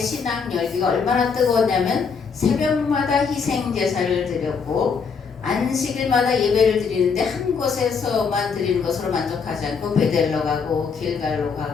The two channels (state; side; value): quieter; right; 5.7 dB